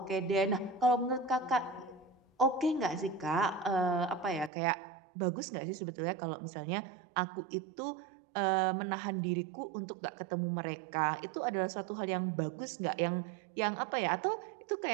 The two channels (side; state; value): left; drops out; at 4.5 s